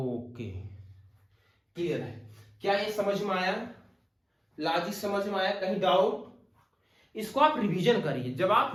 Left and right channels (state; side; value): identical; both; correlation 1.00